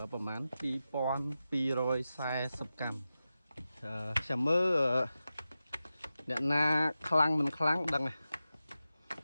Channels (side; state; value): both; inverted; correlation -0.93